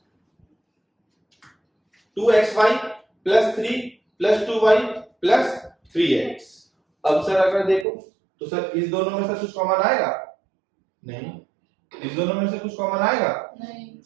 2xy plus 3 plus 2y plus 3x। अब सर अगर देखो तो सर इस दोनों में से कुछ कॉमन आएगा? नहीं। इस दोनों में से कुछ कॉमन आएगा?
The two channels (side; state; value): left; drops out; at 7.9 s